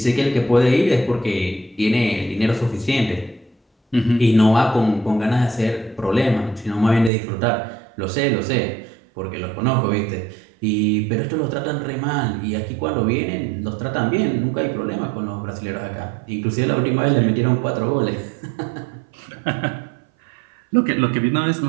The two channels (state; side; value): drops out; left; at 7.1 s